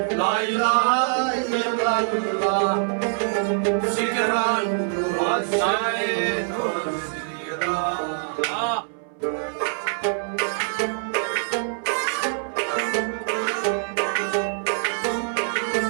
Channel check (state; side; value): silent; left; 62 dB below the other